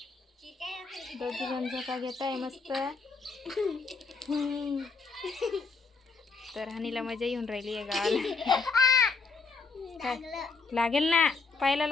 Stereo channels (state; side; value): quieter; right; 4.4 dB